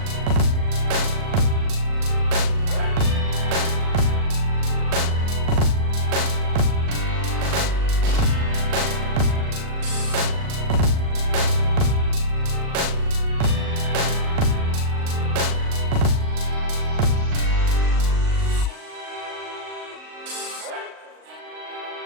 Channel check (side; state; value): left; late; 38 ms